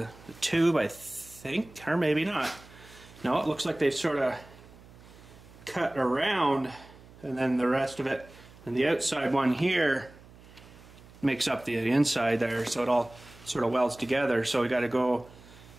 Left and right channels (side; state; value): right; noise; hum, 22 dB below the sound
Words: tube, I think, or maybe not. No, it looks like they've sort of cut around, and then the rest of it, and the outside one here makes up the inside there, so it all sort of welds together. So we got to go